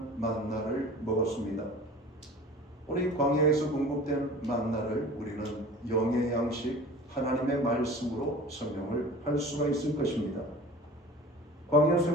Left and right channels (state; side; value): normal; both; correlation 0.40